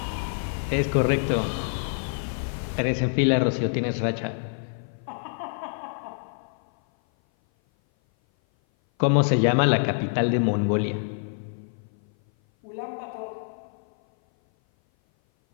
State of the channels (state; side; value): silent; right; 57 dB below the other